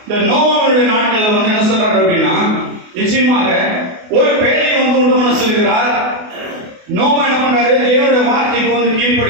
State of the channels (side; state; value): left; late; 28 ms